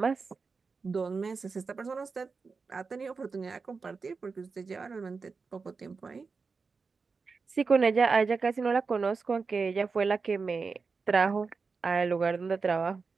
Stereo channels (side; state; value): left; quieter; 4.7 dB